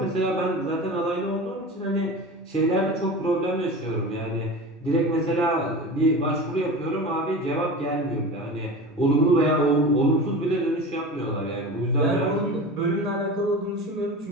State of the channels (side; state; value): both; normal; correlation 0.32